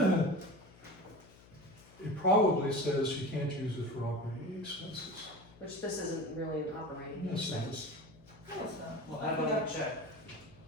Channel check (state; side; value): noise; left; hum, 24 dB below the sound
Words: it probably says you can't use it for operating expenses. Which this isn't really an operating Yes, it expense. is. No, it's not. Well, how about we check?